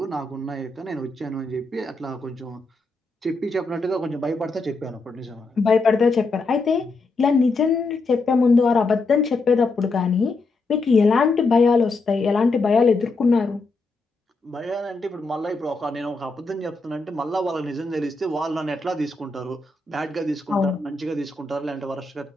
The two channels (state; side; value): quieter; right; 3.4 dB